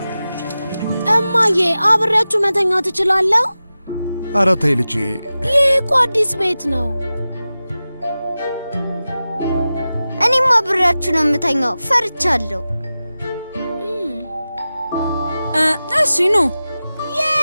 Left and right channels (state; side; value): inverted; both; correlation -0.95